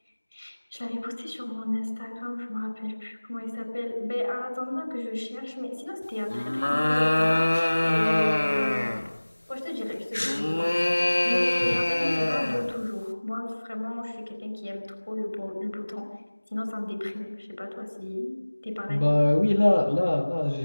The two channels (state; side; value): inverted; both; correlation -1.00